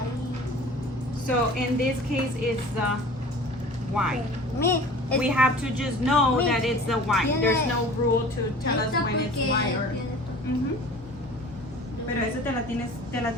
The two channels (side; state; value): both; normal; correlation 0.43